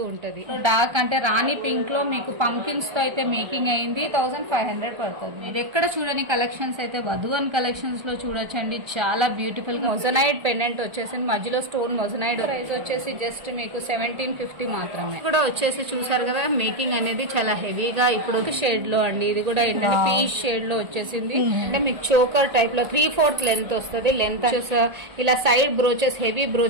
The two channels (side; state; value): left; late; 1.8 ms